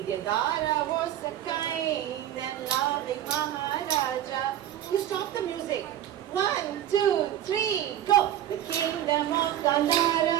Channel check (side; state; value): left; quieter; 11.7 dB